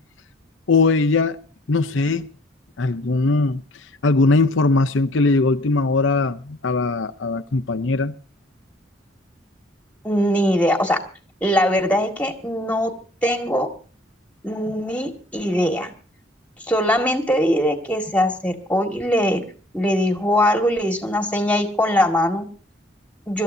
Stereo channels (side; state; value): both; normal; correlation 0.56